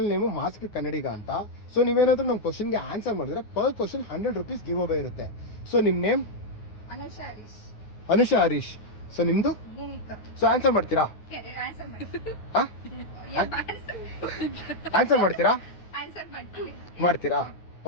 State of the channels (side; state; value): right; late; 9.5 ms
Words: name mask ಕನ್ನಡಿಗ ಅಂತ. So ನೀವೇನಾದ್ರೂ ನಮ್ಮ ಕ್ವಶನ್ಗೆ ಆನ್ಸರ್ ಮಾಡಿದ್ರೆ per question 100 rupees give away ಇರುತ್ತೆ. ಸೊ ನಿಮ್ಮ ನೇಮ್? ಅನುಷಾ ಹರೀಶ್. ಸೊ ನಿಮ್ದು? ಸೊ ಆನ್ಸರ್ ಮಾಡ್ತೀರಾ? ಆನ್ಸರ್ ಮಾಡ್ತೀರಾ? ಮಾಡ್ತೀರಾ?